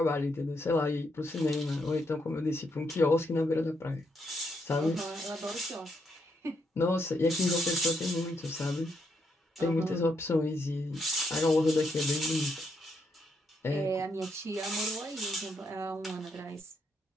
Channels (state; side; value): normal; both; correlation 0.77